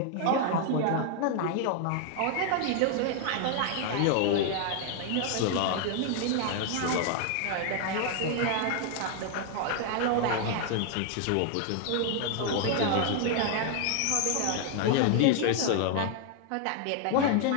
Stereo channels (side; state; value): both; different; correlation 0.00